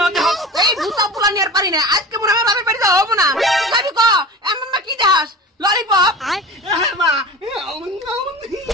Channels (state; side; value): normal; both; correlation 0.33